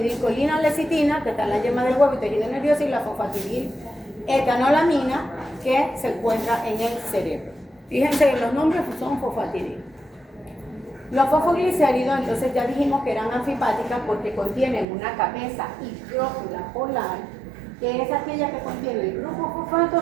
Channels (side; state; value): left; drops out; at 14.9 s